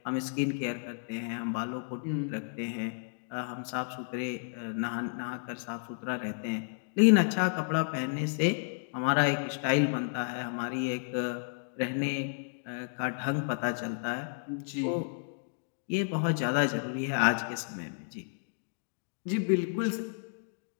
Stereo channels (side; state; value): right; silent; digital silence